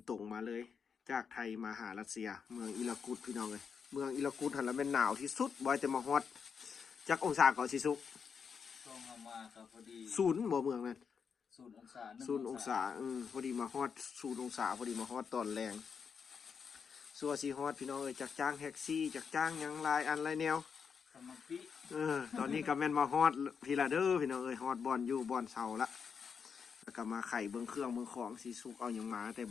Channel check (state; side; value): quieter; right; 6.4 dB